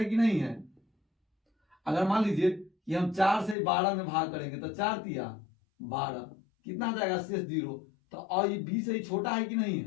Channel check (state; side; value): drops out; right; at 3.6 s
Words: कि नहीं है। अगर मान लीजिए कि हम 4 से 12 में भाग करेंगे तो 4 तिया 12, कितना आ जाएगा शेष 0, तो और ये b से ही छोटा है कि नहीं